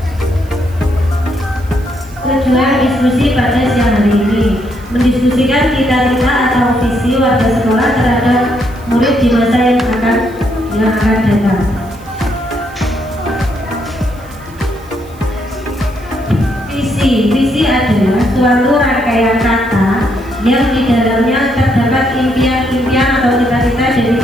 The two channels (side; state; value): right; noise; hiss, 26 dB below the sound